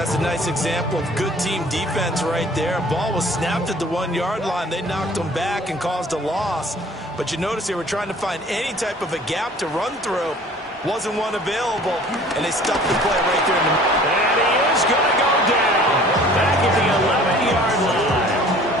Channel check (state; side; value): normal; both; correlation 0.50